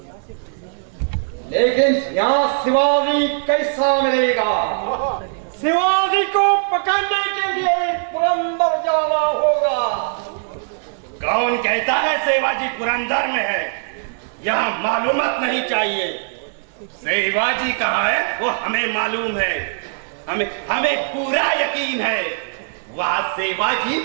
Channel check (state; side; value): silent; left; digital silence